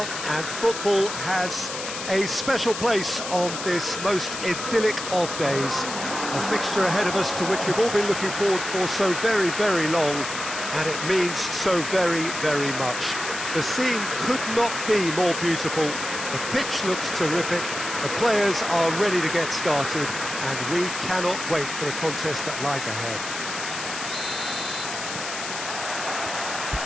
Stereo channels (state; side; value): noise; left; hiss, 7 dB below the sound